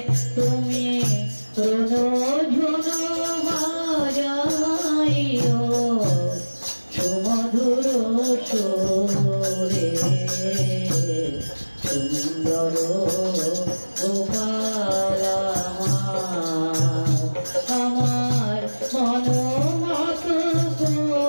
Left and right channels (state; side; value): inverted; both; correlation -1.00